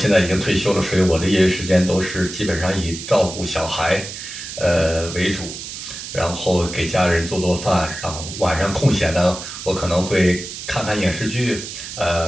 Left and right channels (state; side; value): noise; right; hiss, 10 dB below the sound